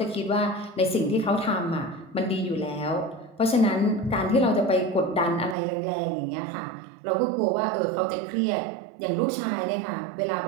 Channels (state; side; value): drops out; left; at 5.6 s